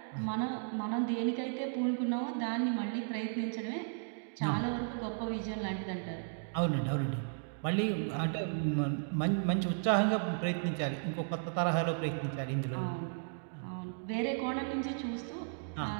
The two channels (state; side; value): silent; left; digital silence